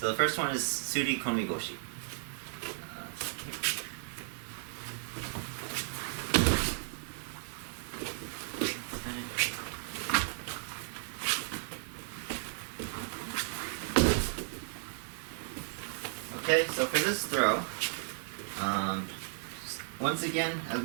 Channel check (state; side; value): silent; left; 55 dB below the other